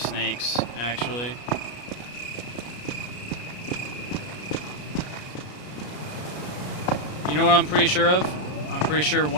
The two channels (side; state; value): right; late; 33 ms